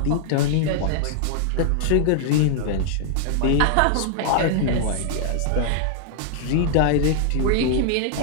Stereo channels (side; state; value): both; different; correlation 0.00